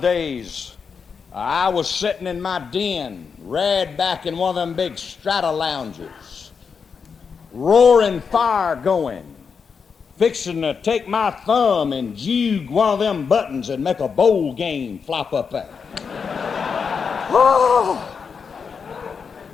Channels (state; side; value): quieter; right; 5.9 dB